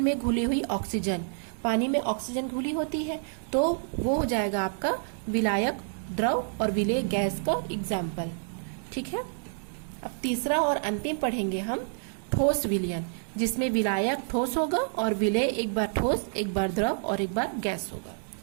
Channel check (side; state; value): left; silent; digital silence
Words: घुली हुई ऑक्सीजन, पानी में ऑक्सीजन घुली होती है, तो वो हो जाएगा आपका विलायक द्रव और विलेय गैस का एग्जाम्पल। ठीक है, अब तीसरा और अंतिम पढ़ेंगे हम ठोस विलयन, जिसमें विलायक ठोस होगा और विलेय एक बार ठोस, एक बार द्रव और एक बार गैस होगा।